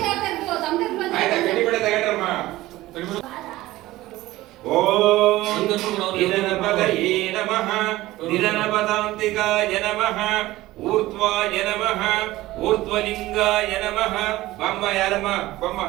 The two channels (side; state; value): left; quieter; 17.2 dB